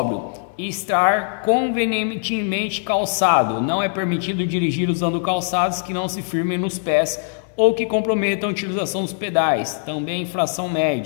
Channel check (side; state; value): right; silent; 65 dB below the other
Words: estar convenientemente calçado, não é permitido dirigir usando calçados que não se firmem nos pés ou que comprometam a utilização dos pedais, também infração